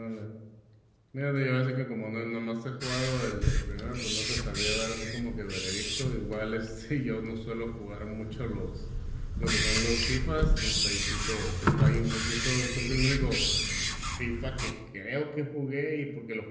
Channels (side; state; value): both; identical; correlation 1.00